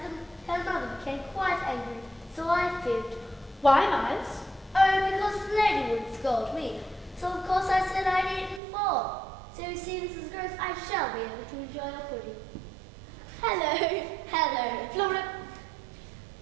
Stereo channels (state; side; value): drops out; left; at 8.6 s